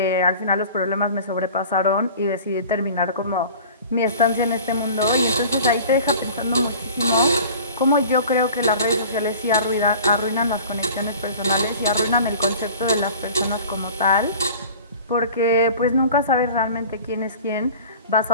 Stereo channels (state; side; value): inverted; both; correlation -0.42